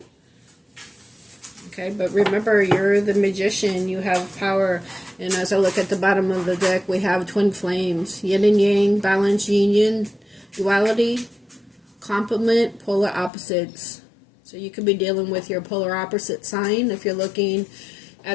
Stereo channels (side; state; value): right; drops out; at 13.3 s